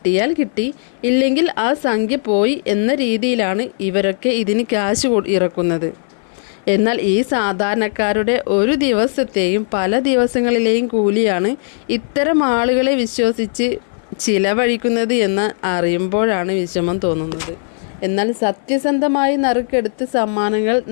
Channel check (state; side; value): silent; right; 57 dB below the other